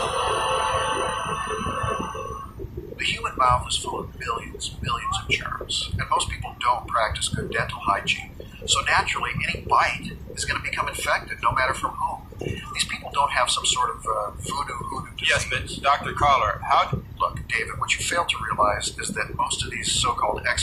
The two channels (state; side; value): identical; both; correlation 1.00